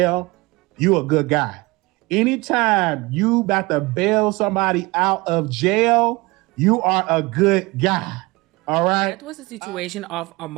you a good guy. Anytime you about to bail somebody out of jail, you are a good guy. All right. That was a situation of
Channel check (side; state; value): left; quieter; 23.2 dB